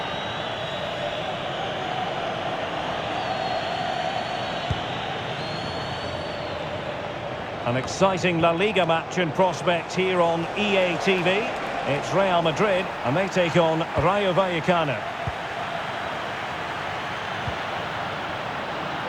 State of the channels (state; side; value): identical; both; correlation 1.00